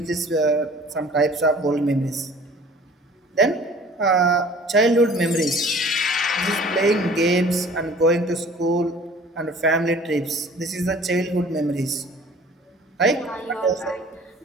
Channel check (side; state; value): both; normal; correlation 0.49